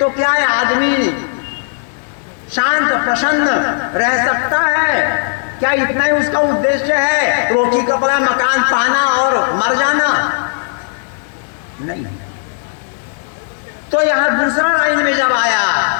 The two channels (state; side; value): silent; right; digital silence